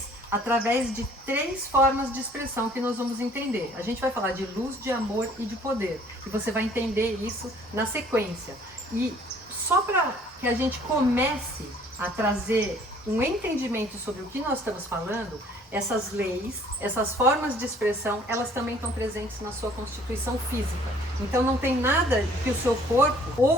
através de 3 formas de expressão que nós vamos entender. A gente vai falar de luz, de amor e de poder. E você vai entender isso na sequência. E só para que a gente comece a trazer um entendimento sobre o que nós estamos falando, essas leis, essas formas de expressão, elas também estão presentes na sua constituição física. Então não tem nada que o seu corpo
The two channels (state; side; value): normal; both; correlation 0.57